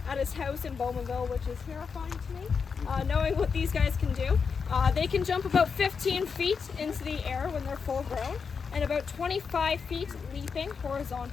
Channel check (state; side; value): quieter; right; 5.7 dB